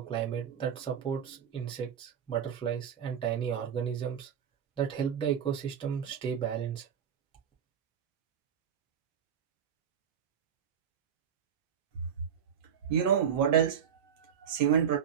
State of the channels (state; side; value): quieter; left; 8.2 dB